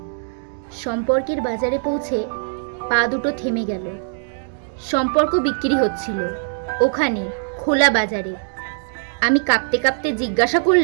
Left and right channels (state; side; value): silent; left; digital silence